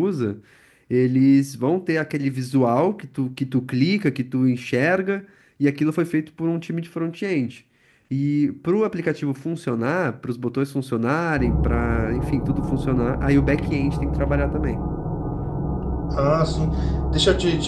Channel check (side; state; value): both; identical; correlation 1.00